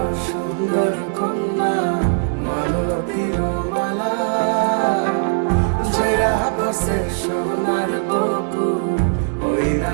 সুন্দর কন্যা মালতীর মালা, ঝরা পড়ছে সোনার বকু ওই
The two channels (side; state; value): left; silent; 62 dB below the other